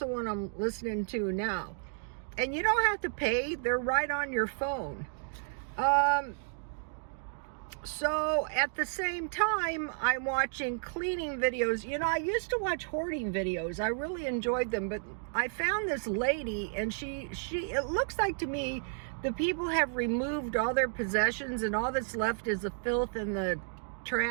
one I'm listening to now. And you don't have to pay, they're right on your phone. So at the same time, I'm watching cleaning videos. You know, I used to watch hoarding videos. I really enjoyed them, but I found this lady, and it looks like to me the people have removed all their possessions and all that's left is the filth and the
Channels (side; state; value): left; silent; digital silence